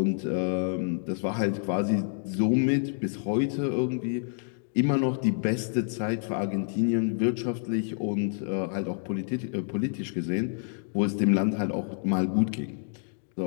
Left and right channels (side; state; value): right; silent; digital silence